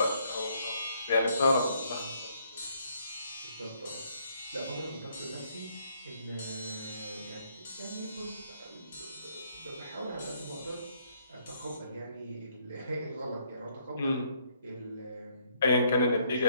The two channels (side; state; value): both; inverted; correlation -0.69